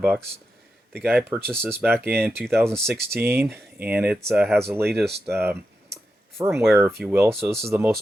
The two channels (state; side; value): normal; both; correlation 0.88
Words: The guy purchased this back in 2016, and it has the latest firmware, if you will. So this is the